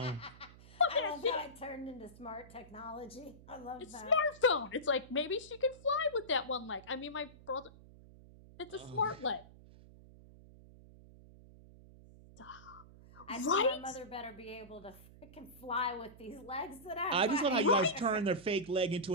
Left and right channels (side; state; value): right; noise; hum, 20 dB below the sound